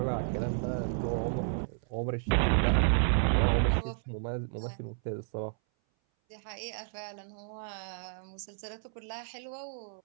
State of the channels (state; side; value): silent; left; 56 dB below the other